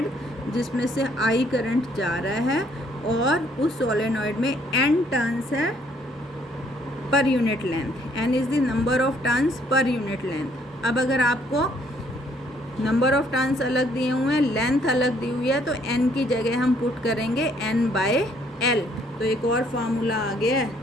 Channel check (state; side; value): normal; both; correlation 0.66